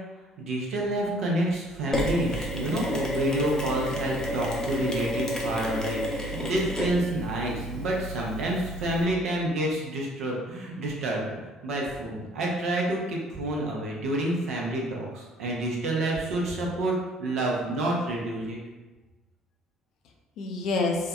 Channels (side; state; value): both; normal; correlation 0.56